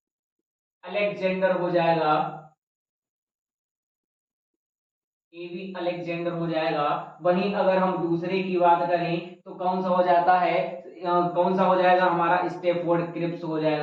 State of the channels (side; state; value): both; identical; correlation 1.00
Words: अलेक्जेंडर हो जाएगा। एबी अलेक्जेंडर हो जाएगा। वहीं अगर हम दूसरे की बात करें तो कौन सा हो जाता है? कौन सा हो जाएगा? हमारा स्टेफोर्ड क्रिप्स हो